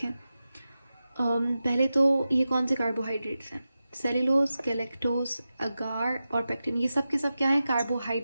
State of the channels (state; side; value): inverted; both; correlation -0.93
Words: पहले तो ये कौन से कार्बोहाइड्रेट्स हैं? सेल्यूलोज, गैलेक्टोज, अगार और पेक्टिन। ये सब के सब क्या है?